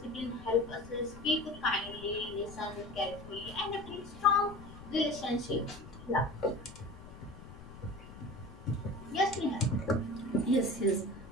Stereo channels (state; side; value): noise; left; rumble, 16 dB below the sound